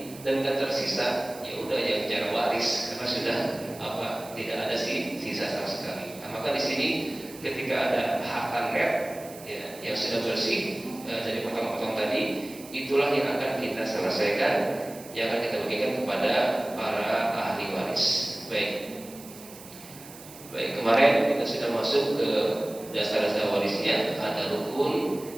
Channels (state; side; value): noise; right; hiss, 18 dB below the sound